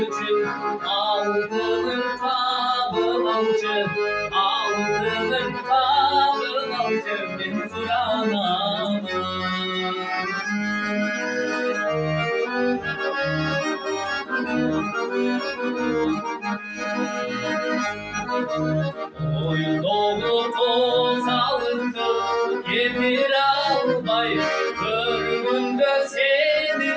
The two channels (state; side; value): identical; both; correlation 1.00